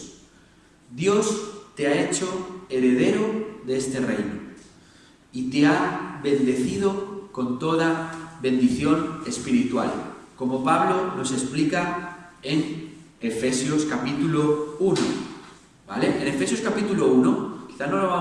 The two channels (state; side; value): identical; both; correlation 1.00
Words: Dios te ha hecho heredero de este reino y te ha bendecido con toda bendición espiritual, como Pablo nos explica en Efesios capítulo 1, ¿vale? En Efesios capítulo 1, quizá no lo